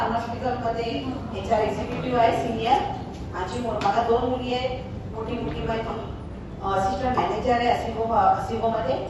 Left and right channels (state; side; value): identical; both; correlation 1.00